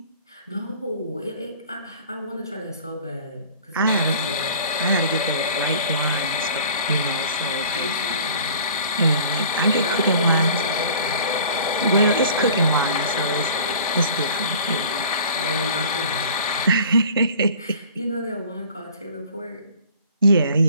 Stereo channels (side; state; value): both; inverted; correlation -0.48